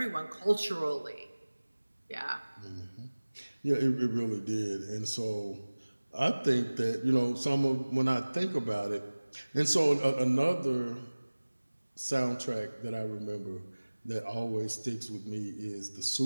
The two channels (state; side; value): inverted; both; correlation -1.00